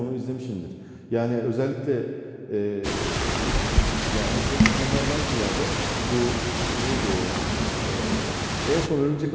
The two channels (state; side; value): identical; both; correlation 1.00